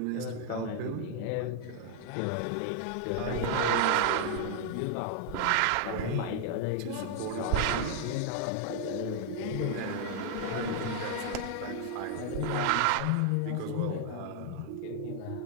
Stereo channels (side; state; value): both; different; correlation 0.00